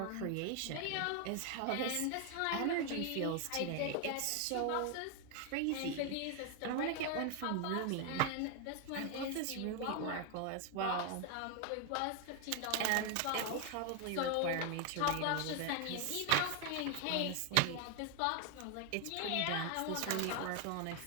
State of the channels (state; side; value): different; both; correlation 0.01